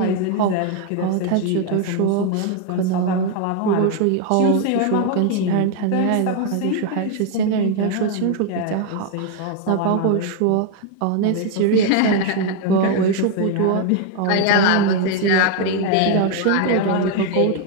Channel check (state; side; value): different; both; correlation 0.01